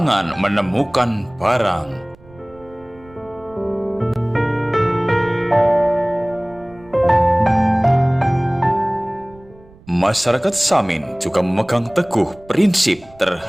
menemukan barang. Masyarakat Samin juga memegang teguh prinsip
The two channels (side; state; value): right; noise; rumble, 25 dB below the sound